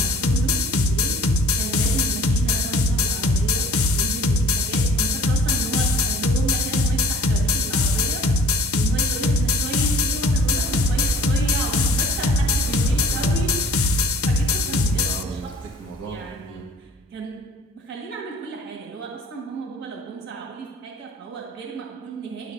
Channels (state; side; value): normal; both; correlation 0.51